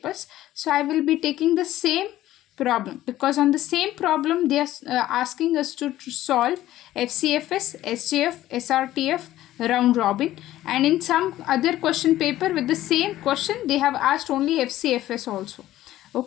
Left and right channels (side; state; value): right; quieter; 14.4 dB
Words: so I will be taking the same problem, because on the same problem they are asking us to solve FCFS, SJF, SRTF, round robin, and in some other question paper with the same question they have asked only FCFS also.